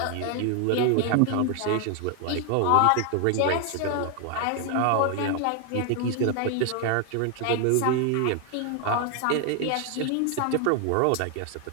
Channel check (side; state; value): both; different; correlation 0.00